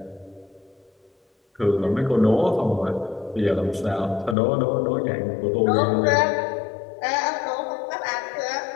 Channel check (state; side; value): drops out; right; at 4.4 s